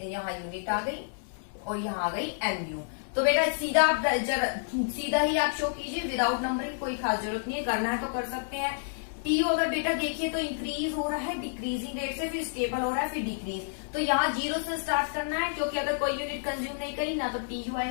यहाँ यूनिट आ गई और यहाँ आ गई MU। तो बेटा सीधा आप सीधा ही आप शो कीजिए, विदाउट नंबरिंग, कोई खास जरूरत नहीं है, करना है तो कर सकते हैं। TU अगर बेटा देखिए तो इंक्रीज हो रहा है डिक्रीजिंग रेट से, फिर स्टेबल हो रहा है, फिर डिक्रीज। तो यहाँ 0 से स्टार्ट करना है, क्योंकि अगर कोई यूनिट कंज्यूम नहीं करी ना तो TU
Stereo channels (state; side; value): silent; right; 58 dB below the other